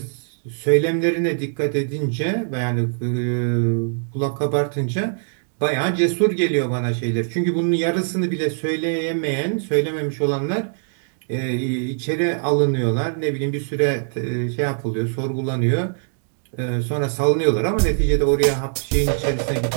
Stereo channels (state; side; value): silent; left; digital silence